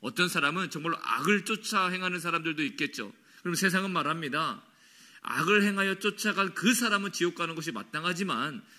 어떤 사람은 정말로 악을 쫓아 행하는 사람들도 있겠죠. 그럼 세상은 말합니다. 악을 행하여 쫓아간 그 사람은 지옥 가는 것이 마땅하지만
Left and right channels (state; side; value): identical; both; correlation 1.00